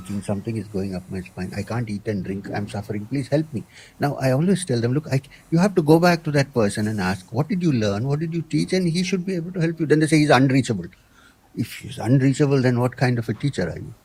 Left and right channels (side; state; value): both; identical; correlation 1.00